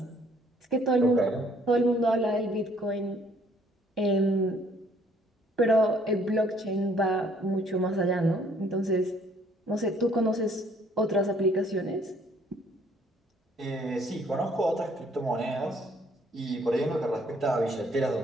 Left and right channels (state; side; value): normal; both; correlation 0.62